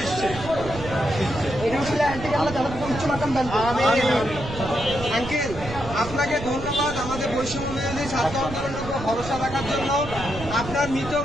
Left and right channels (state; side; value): noise; right; rumble, 10 dB below the sound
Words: আঙ্কেল, আপনাকে ধন্যবাদ আমাদের বৈষম্য বিরোধী ছাত্র আন্দোলনের উপর ভরসা রাখার জন্য। আপনার মৃত